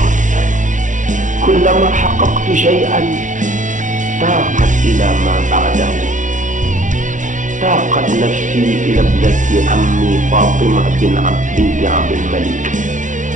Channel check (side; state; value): left; late; 0.37 ms